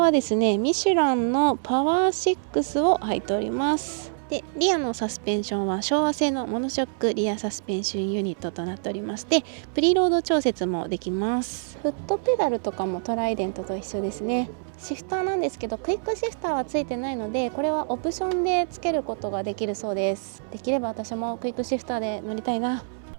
ですねミシュランのパワー6を履いております。でリアのサスペンションは昭和製のモノショックリアサスペンションユニットとなっておりまして、プリロード調節もできます。フットペダルとかもトライデントと一緒ですね。シフターなんですけどクイックシフターはついてないので、これはオプションでつけることができるそうです。できれば私もクイックシフターで乗りたいな。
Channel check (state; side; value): silent; left; 61 dB below the other